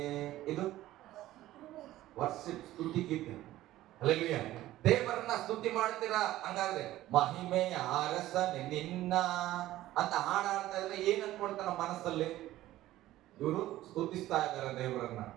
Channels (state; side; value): quieter; left; 15.2 dB